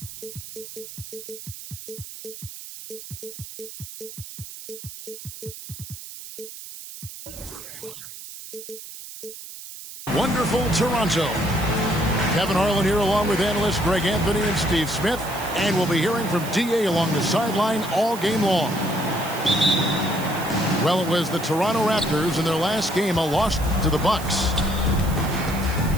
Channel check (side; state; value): right; noise; hiss, 13 dB below the sound